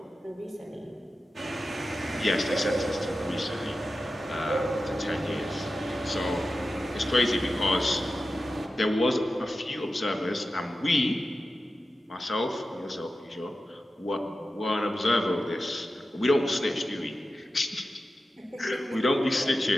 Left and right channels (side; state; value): both; normal; correlation 0.93